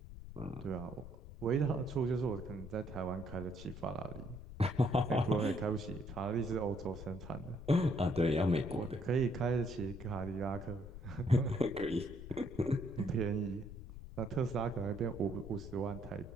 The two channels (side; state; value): left; noise; rumble, 12 dB below the sound